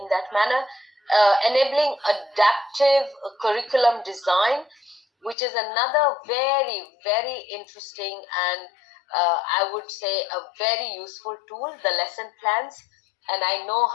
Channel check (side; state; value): right; drops out; at 5.4 s